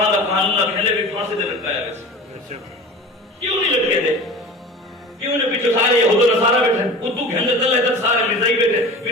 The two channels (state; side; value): normal; both; correlation 0.37